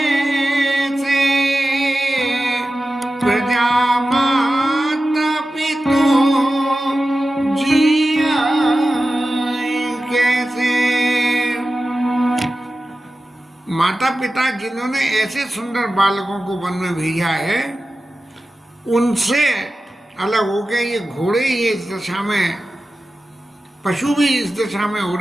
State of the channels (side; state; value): both; normal; correlation 0.93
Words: प्रजा माता पितो जिया कैसे। माता पिता जिन्होंने ऐसे सुंदर बालकों को वन में भेजा है, उनसे अलग हो गए ये घोड़े ये इस दशा में, पशु भी इस दशा में हो